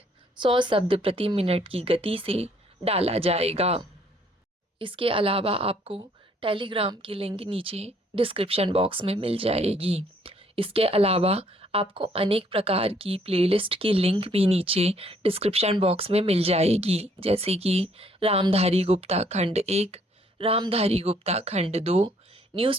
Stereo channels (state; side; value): normal; both; correlation 0.65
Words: 100 शब्द प्रति मिनट की गति से डाला जाएगा। इसके अलावा आपको टेलीग्राम की लिंक नीचे डिस्क्रिप्शन बॉक्स में मिल जाएगी। इसके अलावा आपको अनेक प्रकार की प्लेलिस्ट की लिंक भी नीचे डिस्क्रिप्शन बॉक्स में मिल जाएगी, जैसे कि रामधारी गुप्ता खंड 1, रामधारी गुप्ता खंड 2,